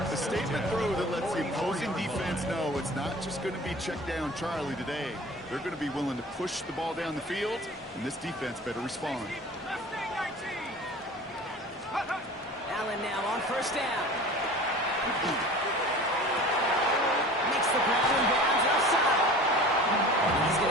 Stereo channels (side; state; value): both; normal; correlation 0.41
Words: A statement throw that lets the opposing defense know it's not just going to be check down Charlie today. They're going to be willing to push the ball down the field, and this defense better respond. Allen now on first down. Makes the grab and bounds outside. He's